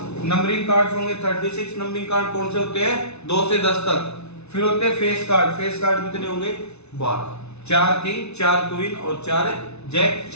नंबरिंग कार्ड्स होंगे 36। नंबरिंग कार्ड कौन से होते हैं 2 से 10 तक। फिर होते हैं फेस कार्ड। फेस कार्ड कितने होंगे 12, 4 किंग, 4 क्वीन और 4 जैक,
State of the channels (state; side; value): late; right; 0.81 ms